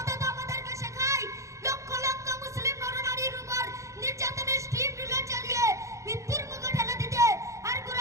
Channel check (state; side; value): late; left; 0.15 ms